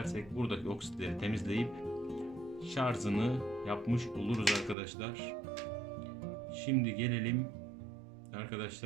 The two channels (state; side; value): drops out; left; at 4.8 s